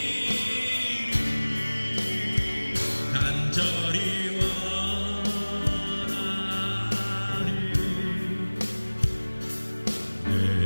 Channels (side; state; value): both; inverted; correlation -1.00